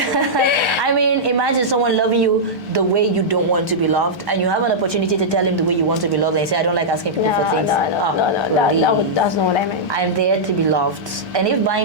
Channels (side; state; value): both; normal; correlation -0.11